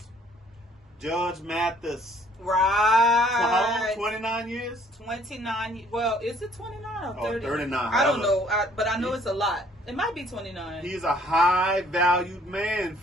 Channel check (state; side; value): normal; both; correlation 0.60